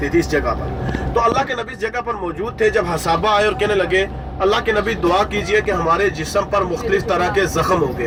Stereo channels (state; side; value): identical; both; correlation 1.00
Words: تھی اس جگہ پر، تو اللہ کے نبی اس جگہ پر موجود تھے۔ جب حسابہ آئے اور کہنے لگے اللہ کے نبی دعا کیجئے کہ ہمارے جسم پر مختلف طرح کے زخم ہو